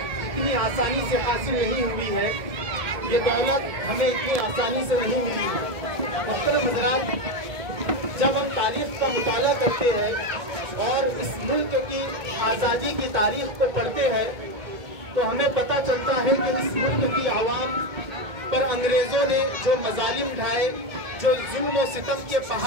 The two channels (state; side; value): late; left; 1.7 ms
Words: آسانی سے حاصل نہیں ہوئی ہے، یہ دولت ہمیں اتنی آسانی سے نہیں ملی ہے۔ محترم حضرات، جب ہم تاریخ کا مطالعہ کرتے ہیں اور اس ملک کی آزادی کی تاریخ کو پڑھتے ہیں تو ہمیں پتہ چلتا ہے کہ اس ملک کی عوام پر انگریزوں نے جو مظالم ڈھائے، جو ظلم و ستم کے